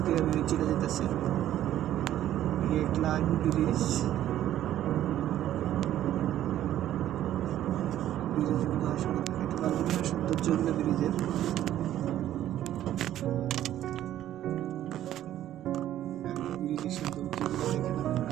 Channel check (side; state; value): left; quieter; 12.3 dB